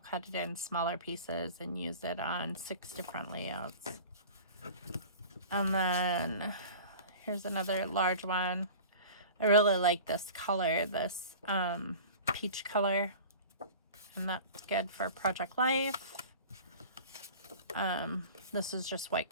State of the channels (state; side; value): inverted; both; correlation -0.40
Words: it in smaller pieces and use it on 6 different layouts. And then here's another large one. I really like this color, this peach color. And that's good for Project Life. This is just white